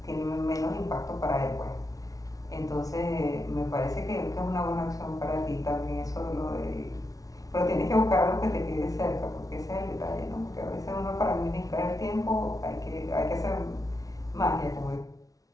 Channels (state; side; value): late; right; 0.18 ms